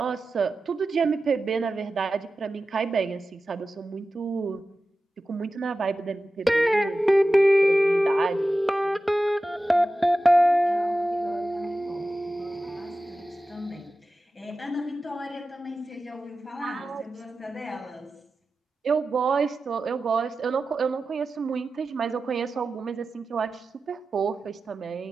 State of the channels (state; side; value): normal; both; correlation 0.94